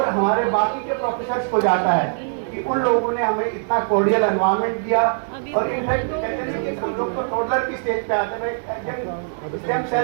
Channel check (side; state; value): left; silent; 64 dB below the other